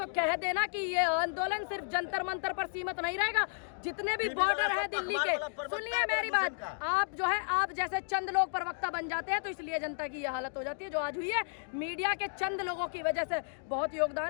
कह देना कि ये आंदोलन सिर्फ जंतर मंतर पर सीमित नहीं रहेगा। जितने भी बॉर्डर है दिल्ली के, सुनिए मेरी बात, आप जो है आप जैसे चंद लोग प्रवक्ता बन जाते हैं तो इसलिए जनता की ये हालत हो जाती है जो आज हुई है। मीडिया के चंद लोगों की वजह से बहुत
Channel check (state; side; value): silent; right; digital silence